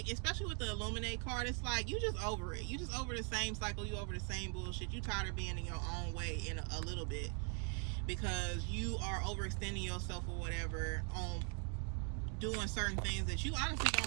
especially with the Illuminate card, it's like you just over it. You just over the same cycle. You over the same bullshit. You tired of being in your own way in a little bit, because you are overextending yourself or whatever on doing certain things that you honestly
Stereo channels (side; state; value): left; quieter; 39.1 dB